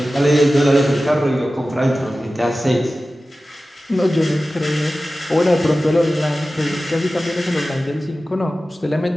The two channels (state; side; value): normal; both; correlation 0.95